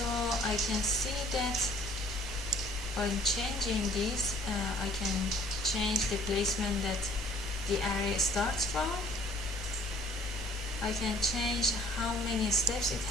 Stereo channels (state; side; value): normal; both; correlation 0.55